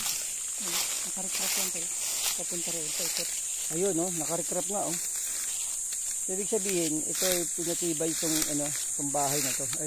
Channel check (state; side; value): identical; both; correlation 1.00